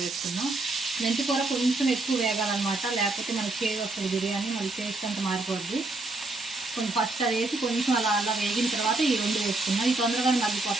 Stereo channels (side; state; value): left; quieter; 3.1 dB